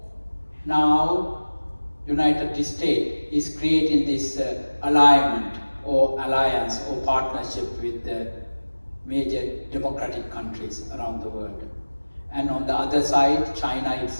now United States is creating this alignment or alliance or partnership with the major democratic countries around the world. And on the other side, China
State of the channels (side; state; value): both; inverted; correlation -1.00